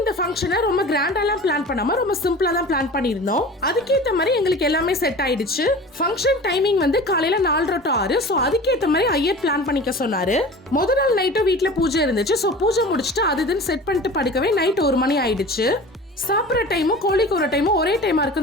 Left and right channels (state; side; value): normal; both; correlation 0.38